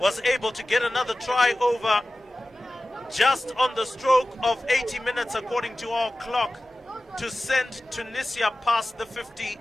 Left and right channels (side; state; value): both; normal; correlation 0.95